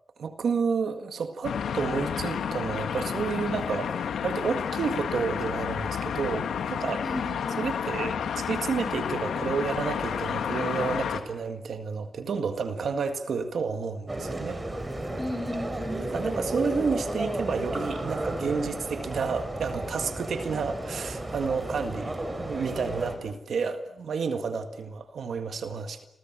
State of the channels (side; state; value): both; normal; correlation 0.79